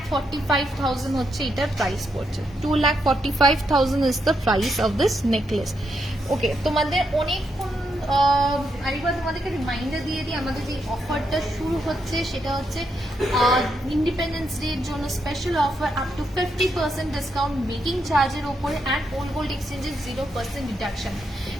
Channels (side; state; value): both; normal; correlation 0.80